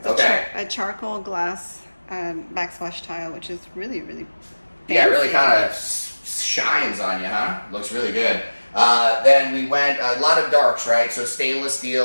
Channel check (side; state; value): both; inverted; correlation -1.00